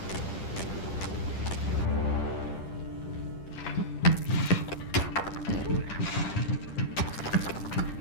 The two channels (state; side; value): late; right; 10 ms